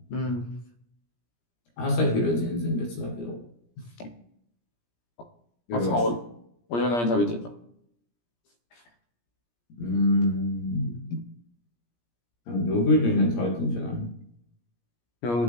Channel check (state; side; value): late; right; 17 ms